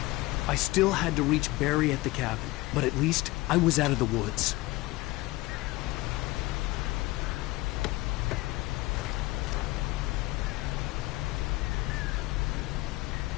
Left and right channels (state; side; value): quieter; right; 20.0 dB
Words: I still had to reach Barry at the cabin, but at least I was out of the woods.